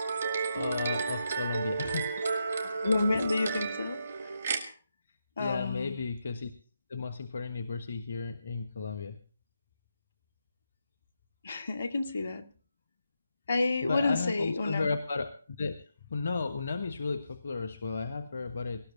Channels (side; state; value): both; inverted; correlation -0.84